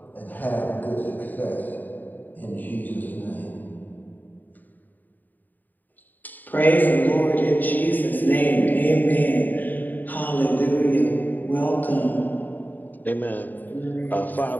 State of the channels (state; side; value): late; right; 0.086 ms